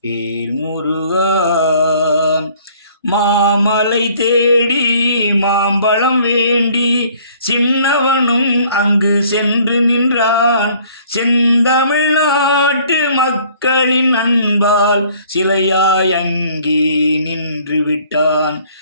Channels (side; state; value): both; inverted; correlation -0.57